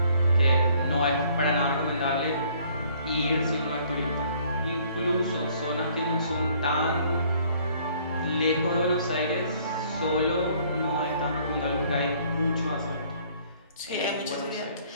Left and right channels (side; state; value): both; inverted; correlation -0.60